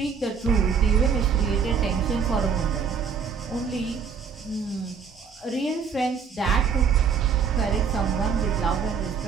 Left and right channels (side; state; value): left; quieter; 6.3 dB